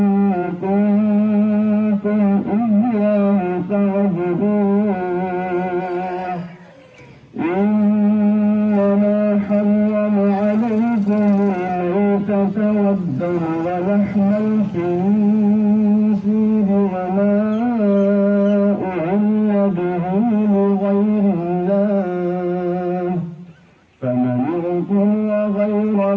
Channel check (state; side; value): identical; both; correlation 1.00